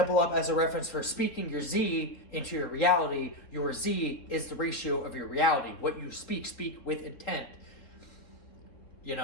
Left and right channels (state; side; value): late; right; 3.7 ms